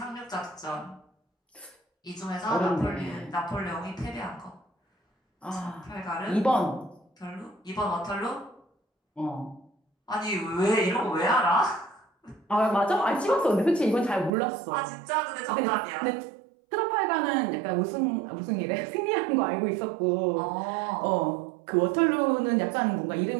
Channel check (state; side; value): drops out; left; at 14.3 s